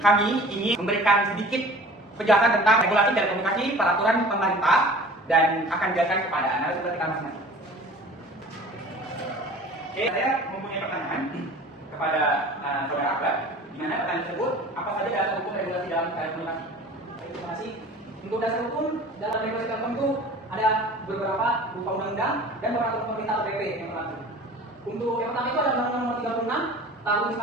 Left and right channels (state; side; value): normal; both; correlation 0.43